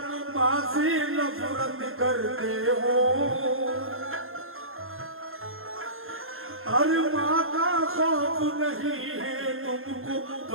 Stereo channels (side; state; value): left; late; 0.61 ms